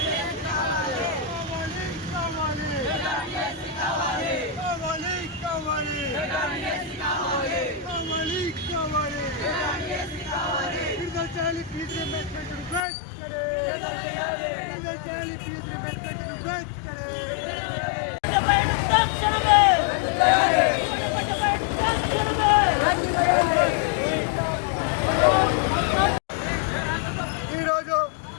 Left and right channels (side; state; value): right; drops out; at 12.9 s